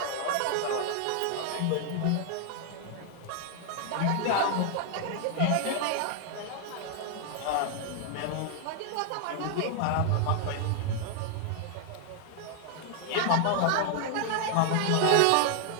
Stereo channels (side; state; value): both; different; correlation 0.00